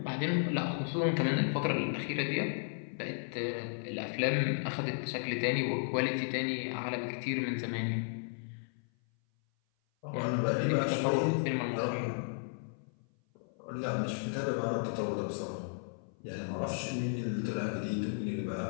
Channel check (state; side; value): silent; right; 55 dB below the other